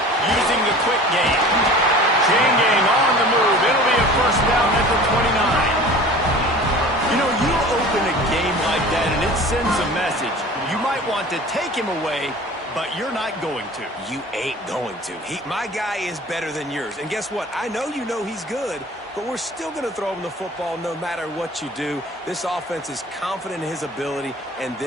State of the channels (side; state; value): both; normal; correlation 0.42